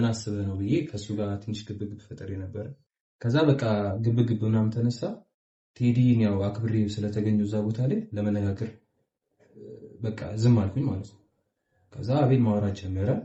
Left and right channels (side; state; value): both; identical; correlation 1.00